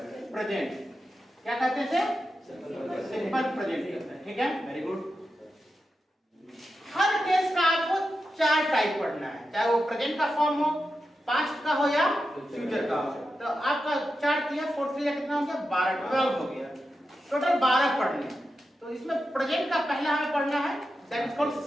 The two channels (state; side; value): normal; both; correlation 0.90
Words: present. क्या कहते हैं इसे, सिंपल प्रेजेंट। ठीक है, वेरी गुड। हर टेंस का आपको 4 टाइप पढ़ना है, चाहे वो प्रेजेंट का फॉर्म हो, पास्ट का हो या फ्यूचर का हो। तो आपका 4 किया, 4 किया कितना हो गया, 12, 12 हो गया, टोटल 12 पढ़ने। तो इसमें प्रेजेंट का पहला हमें पढ़ना है, that is called